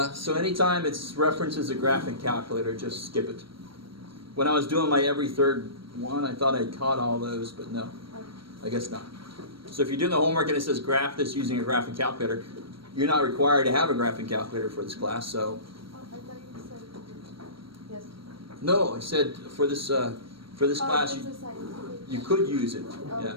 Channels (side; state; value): left; late; 0.74 ms